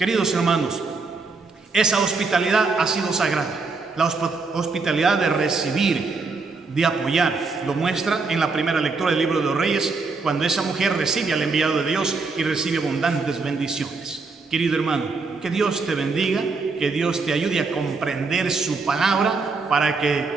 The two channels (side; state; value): left; quieter; 4.2 dB